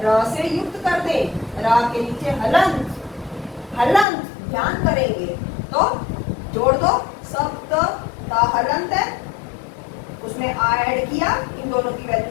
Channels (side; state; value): right; drops out; at 4.0 s